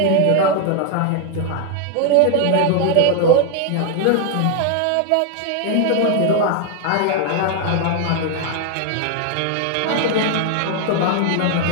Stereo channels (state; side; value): different; both; correlation 0.00